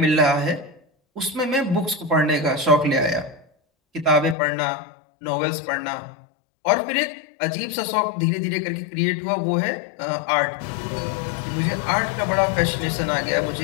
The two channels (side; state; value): right; drops out; at 4.4 s